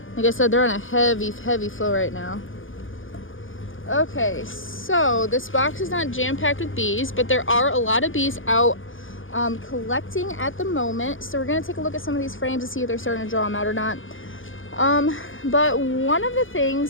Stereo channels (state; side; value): late; right; 0.58 ms